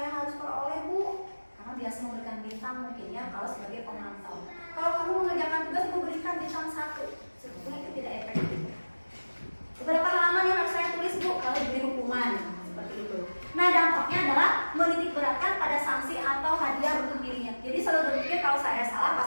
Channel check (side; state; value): both; inverted; correlation -1.00